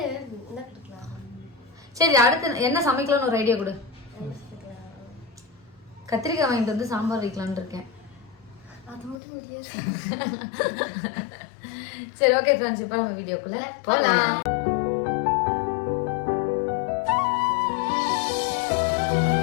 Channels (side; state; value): right; drops out; at 9.2 s